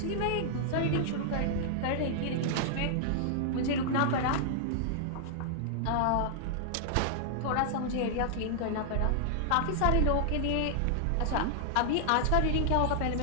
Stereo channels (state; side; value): different; both; correlation -0.01